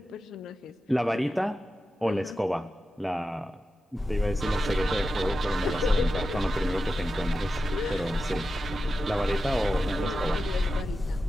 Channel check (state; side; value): normal; both; correlation 0.91